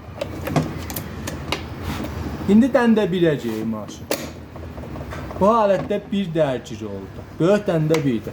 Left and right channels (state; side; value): identical; both; correlation 1.00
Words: İndi dəndə biləcəyik maşın. Bu halətdə bir dərgir oldu. Böyük dəndə